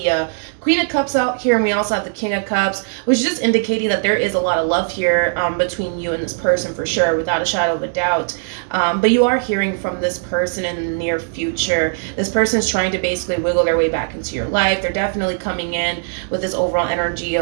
Queen of Cups out here, and we also have the King of Cups, which is just indicating that there is a lot of love here between you and this person for sure, without a shadow of a doubt. But you are hearing from this person in the near future. This person is trying to basically wiggle their way back into your life. They're definitely coming in with this overall energy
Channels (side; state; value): left; silent; 65 dB below the other